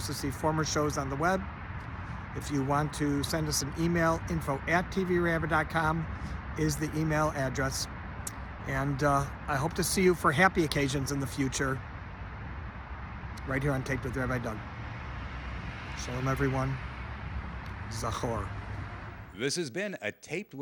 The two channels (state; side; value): identical; both; correlation 1.00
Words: see former shows on the web. If you want to send us an email, info@tvrabbi.com is the email address. And I hope to see you for happy occasions in the future, right here on Taped with Rabbi Doug. Shalom, everyone. Zachor. This has been a Taped